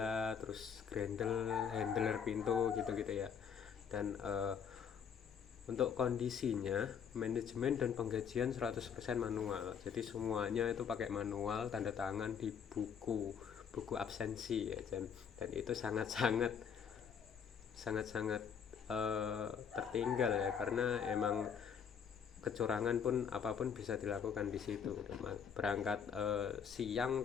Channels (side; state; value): right; quieter; 7.3 dB